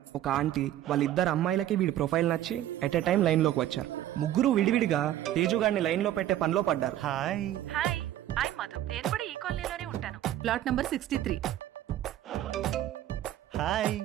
ఒక ఆంటీ వాళ్ళిద్దరు అమ్మాయిలకి వీడి ప్రొఫైల్ నచ్చి ఎట్ ఎ టైం లైన్లోకి వచ్చారు. ముగ్గురు విడివిడిగా తేజుగాడిని లైన్లో పెట్టే పనిలో పడ్డారు. హాయ్. Hi, I Madhu. నేను కూడా ఈ కాలనీలోనే ఉంటాను. Plot number 63. Hi.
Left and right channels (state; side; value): quieter; left; 12.7 dB